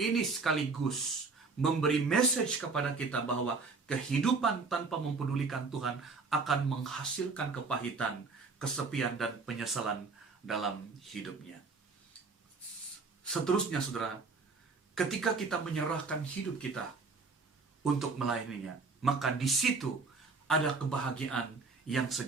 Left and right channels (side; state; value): left; quieter; 4.3 dB